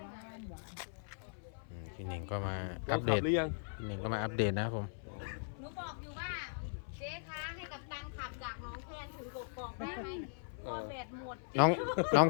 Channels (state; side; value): silent; right; 52 dB below the other